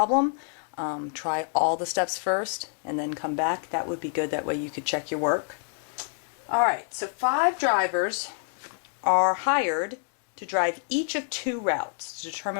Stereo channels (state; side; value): silent; right; digital silence